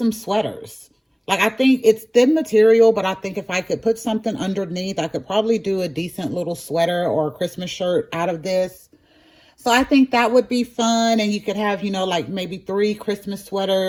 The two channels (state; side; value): identical; both; correlation 1.00